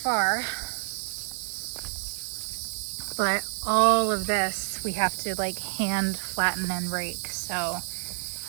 but all of this we have to like hand flatten and rake. So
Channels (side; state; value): left; silent; digital silence